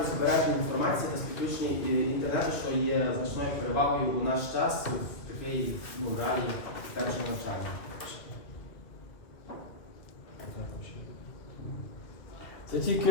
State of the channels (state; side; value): late; right; 2.3 ms